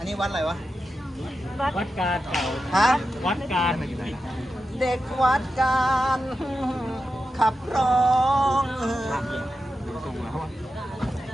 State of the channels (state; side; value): normal; both; correlation 0.90